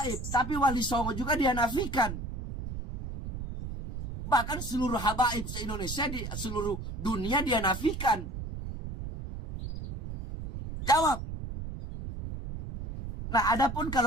tapi Wali Songo juga dia nafikan. Bahkan seluruh habaib se-Indonesia, di seluruh dunia dia nafikan. Jawab. Nah, adapun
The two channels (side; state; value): right; noise; rumble, 7 dB below the sound